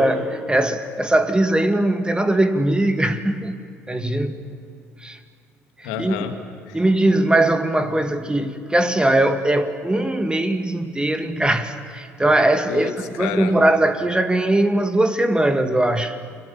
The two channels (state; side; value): normal; both; correlation 0.88